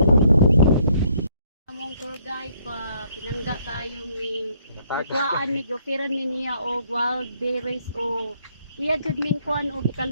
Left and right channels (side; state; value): both; inverted; correlation -0.68